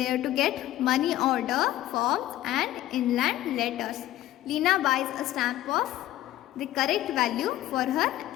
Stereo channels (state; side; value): quieter; right; 14.3 dB